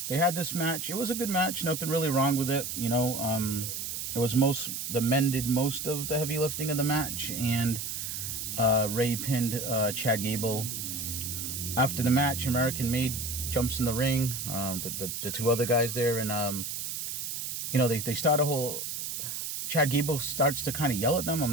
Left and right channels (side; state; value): right; noise; hiss, 4 dB below the sound